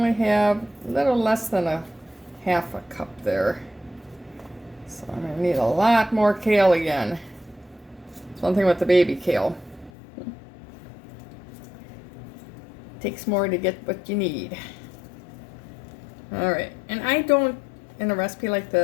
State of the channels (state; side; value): drops out; right; at 9.9 s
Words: have a little less than a half a cup there. So I'm gonna need a lot more kale again. It's one thing with the baby kale. Takes more to get what you need. All right, and I don't, in a recipe like